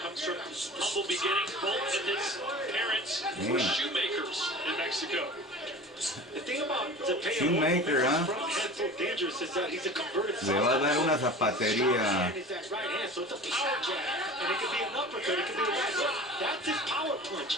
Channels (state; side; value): normal; both; correlation 0.38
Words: from humble beginnings. Both of his parents were shoemakers in Mexico. The thing about Zepeda, Shoemaker, huh? front hand so dangerous is that he's a converted Le va a dar una Short zapatería. hand is that right hand, so it's a power jab, and it could be an uppercut, it could be a right hook. That's his power punch.